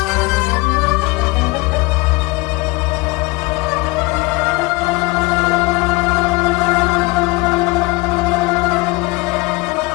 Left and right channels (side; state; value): right; quieter; 24.3 dB